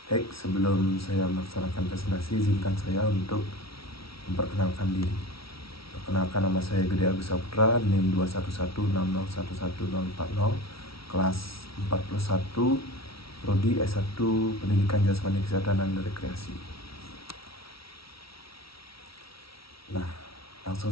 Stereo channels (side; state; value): right; late; 0.75 ms